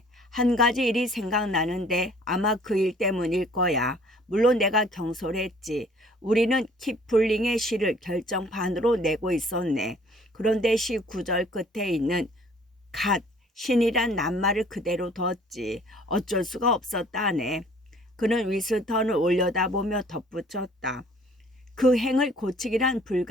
한 가지 일이 생각나는데 아마 그 일 때문일 거야. 물론 내가 경솔했지. 우리는 키플링의 시를 결정판으로 내고 있었네. 그런데 시 구절 끝에 있는 갓, 신이란 낱말을 그대로 뒀지. 어쩔 수가 없었다네. 그는 위스턴을 올려다보며 덧붙였다. 그 행을 고치기란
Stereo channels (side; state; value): both; normal; correlation 0.55